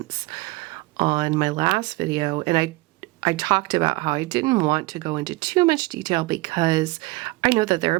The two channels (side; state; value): left; quieter; 21.8 dB